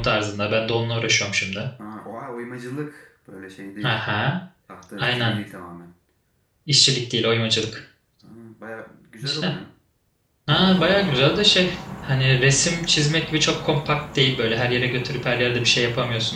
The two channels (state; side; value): identical; both; correlation 1.00